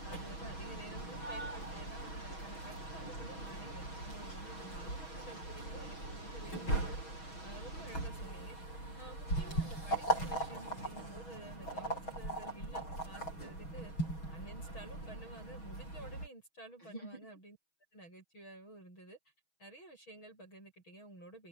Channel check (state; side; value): late; right; 6.2 ms